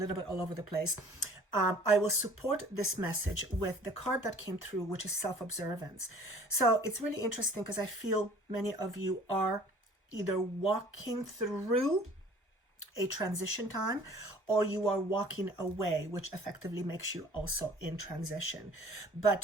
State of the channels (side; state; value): both; normal; correlation 0.50